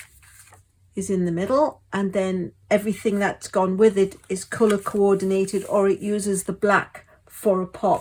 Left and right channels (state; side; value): identical; both; correlation 1.00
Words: is in the middle, and then everything that's gone with it is color coordinated, or it uses the black for a